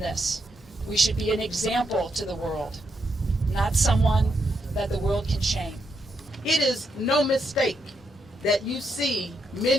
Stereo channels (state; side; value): normal; both; correlation 0.81